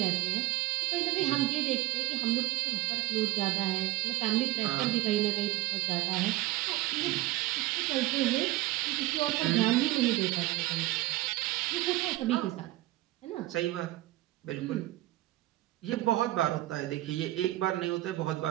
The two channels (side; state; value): left; quieter; 17.0 dB